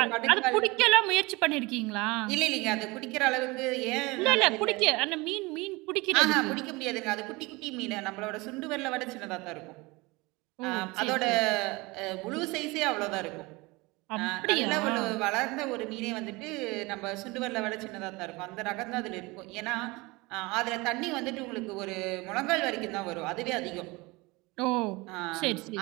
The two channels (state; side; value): quieter; left; 23.9 dB